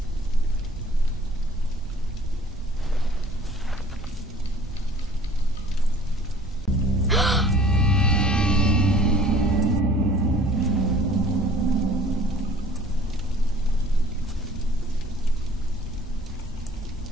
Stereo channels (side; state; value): both; normal; correlation 0.52